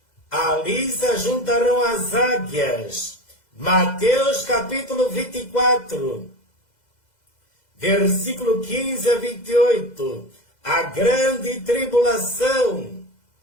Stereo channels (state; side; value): late; right; 2.0 ms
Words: ali se juntarão as águias. Mateus capítulo 24, versículo 15 a 28. A grande tribulação.